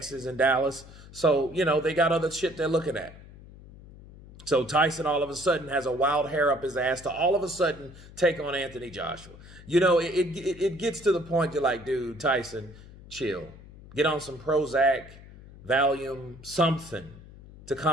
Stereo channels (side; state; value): left; noise; hum, 19 dB below the sound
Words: and Dallas. So, they got other shit they're looking at. So Tyson all of a sudden has a wild hair up his ass to all of a sudden take on Anthony Joshua. It gets to the point you're like, dude, Tyson, chill. Get on some Prozac, Valium, something to